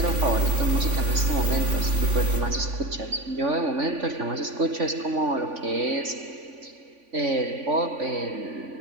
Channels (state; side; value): late; left; 3.5 ms